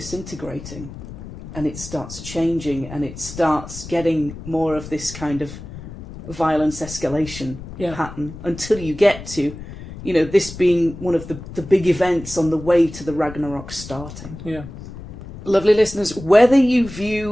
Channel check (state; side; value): noise; left; rumble, 13 dB below the sound